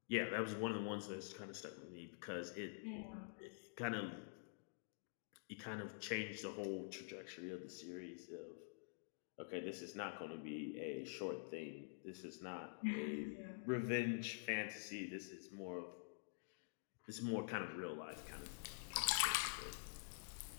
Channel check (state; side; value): silent; right; digital silence